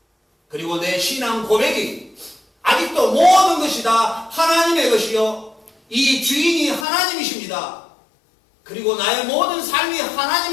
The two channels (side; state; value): right; drops out; at 6.9 s